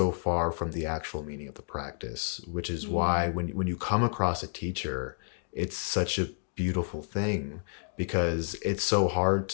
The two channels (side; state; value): right; silent; digital silence